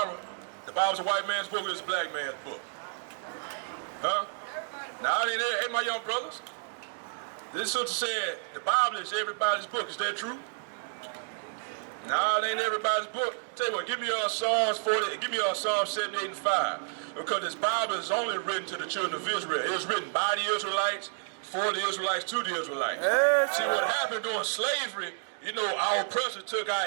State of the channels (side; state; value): left; silent; digital silence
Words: The Bible's a white man's book or it's a black man's book? Huh? Now, it ain't there. Hey, my young brothers. This sister said the Bible is everybody's book. Is that true? No, it ain't everybody's book. Tell you what, give me Psalms 40, give me Psalms 78 and 5. Because this Bible is only written to the children of Israel. It was written by the Israelites, for the Israelites, to the Israelites. See, what happened during slavery, you know, our oppressors took